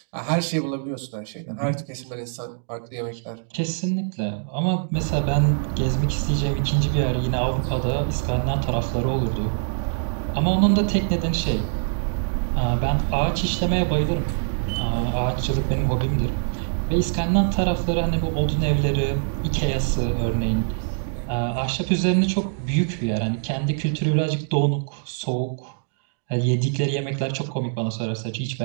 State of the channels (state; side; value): silent; left; digital silence